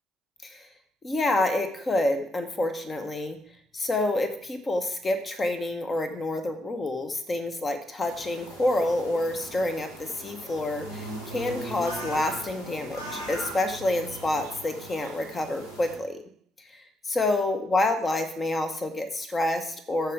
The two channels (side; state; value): both; normal; correlation 0.80